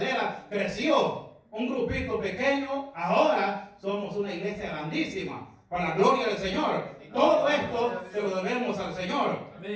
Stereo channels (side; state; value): both; identical; correlation 1.00